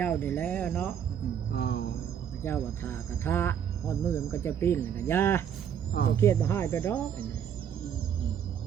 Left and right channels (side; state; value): left; quieter; 8.7 dB